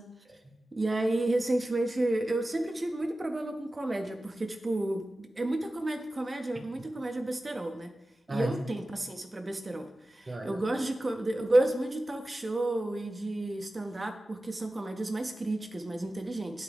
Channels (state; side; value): normal; both; correlation 0.95